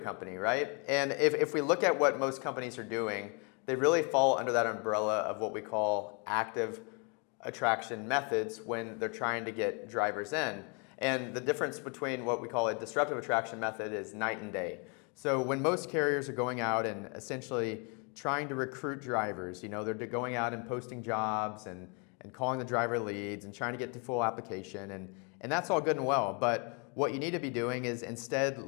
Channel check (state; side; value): quieter; right; 34.9 dB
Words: right? And if we look at what most companies are doing, they really fall under that umbrella of what we call active attraction methods when they're trying to get drivers in. And the difference between what we call a disruptive attraction method is night and day. So when most carriers are going out and essentially trying to recruit drivers, they're going out and posting jobs and calling the driver leads and trying to get to full application, and that's all good and well. But what you need to be doing is instead